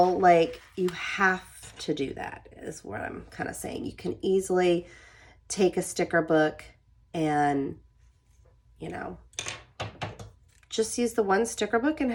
like you have to do that, is what I'm kind of saying. You can easily take a sticker book and, you know, just use the one sticker book and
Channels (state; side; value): identical; both; correlation 1.00